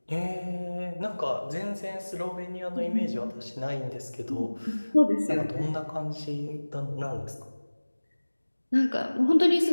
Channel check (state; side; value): inverted; both; correlation -1.00